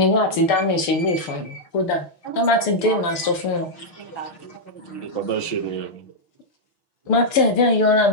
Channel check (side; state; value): right; late; 6.8 ms